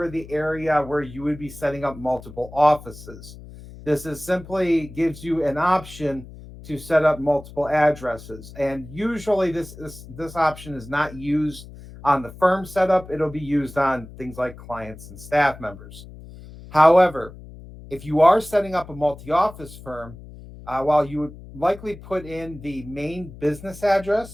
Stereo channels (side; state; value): left; noise; hum, 16 dB below the sound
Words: the area where you would be setting up multiple offices. This is simply gives you an option to set up multiple addresses. And usually this option is not used on the firm setup. It'll be used on things like clients and staff members. However, if you are setting up a multi-office firm, while you would likely put in the main business